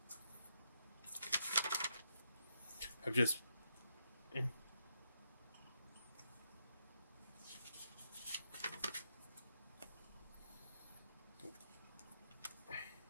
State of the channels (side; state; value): both; inverted; correlation -0.80